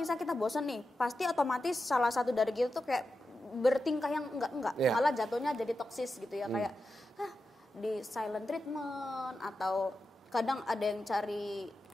kita bosan nih, pasti otomatis salah satu dari kita tuh kayak bertingkah yang enggak, malah jatuhnya jadi toksis gitu ya, kayak di silent treatment atau kadang ada yang cari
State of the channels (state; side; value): normal; both; correlation 0.90